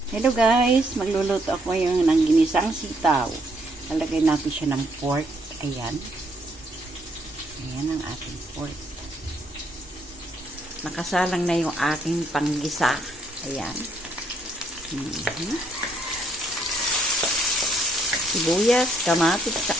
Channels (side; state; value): both; normal; correlation 0.71